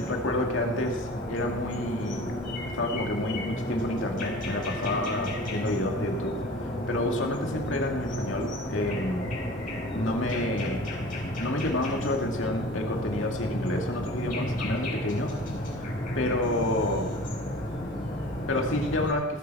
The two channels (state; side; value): normal; both; correlation 0.41